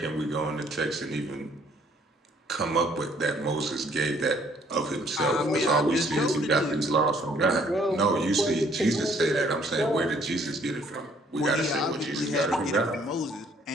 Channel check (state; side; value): normal; both; correlation 0.62